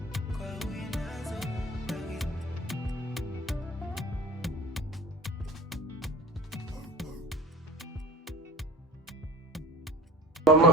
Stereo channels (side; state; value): both; normal; correlation 0.38